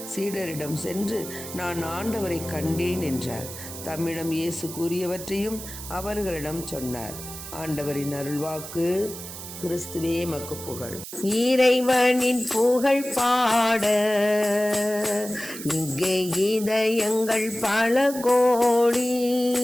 சீடரிடம் சென்று, நான் ஆண்டவரை கண்டேன் என்றார். தம்மிடம் இயேசு கூறியவற்றையும் அவர்களிடம் சொன்னார். ஆண்டவரின் அருள்வாக்கு. கிறிஸ்துவே மக்கு புகழ். இறைவனின் புகழ் பாட இங்கே இதயங்கள் பல கோடி,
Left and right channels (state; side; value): noise; right; hiss, 11 dB below the sound